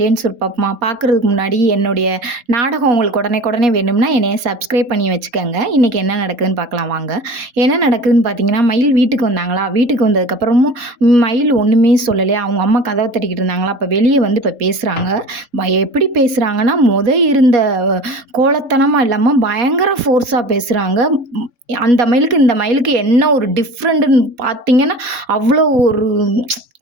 சுருப்பமா பார்க்குறதுக்கு முன்னாடி என்னுடைய நாடகம் உங்களுக்கு உடனே வேணும்னா என்னைய சப்ஸ்கிரைப் பண்ணி வச்சுக்கோங்க. இன்றைக்கி என்ன நடக்குதுன்னு பார்க்கலாம் வாங்க. என்ன நடக்குதுன்னு பார்த்தீங்கன்னா, மயில் வீட்டுக்கு வந்தாங்களா, வீட்டுக்கு வந்ததுக்கப்புறமும் மயில் ஒன்றுமே சொல்லலையா, அவங்க அம்மா கதவை தட்டிக்கிட்டு இருந்தாங்களா, அப்போ வெளியே வந்து இப்போ பேசுகிறாங்க. எப்படி பேசுகிறாங்கன்னா, இருந்த கோலத்தனமாக இல்லாமல் பயங்கர ஃபோர்ஸாக பேசுகிறாங்க. அந்த மயிலுக்கு இந்த மயிலுக்கு என்ன ஒரு டிஃப்ரெண்ட்டுன்னு பார்த்தீங்கன்னா, அவ்வளோ ஒரு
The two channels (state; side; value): late; left; 3.8 ms